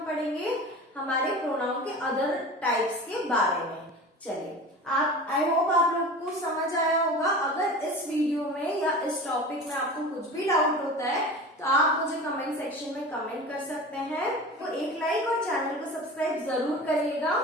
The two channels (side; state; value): both; normal; correlation 0.34